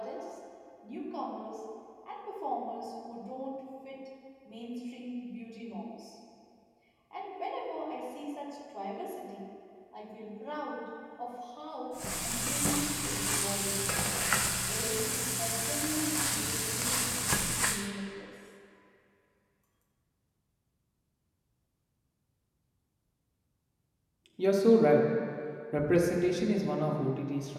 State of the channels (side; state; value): both; identical; correlation 1.00